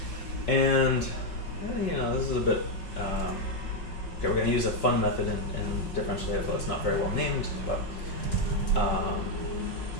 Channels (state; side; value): late; right; 5.3 ms